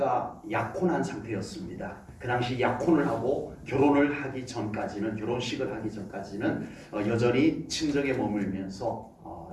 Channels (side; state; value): both; identical; correlation 1.00